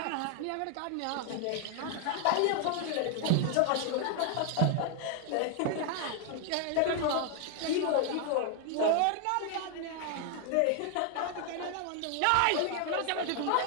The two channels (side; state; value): both; different; correlation 0.00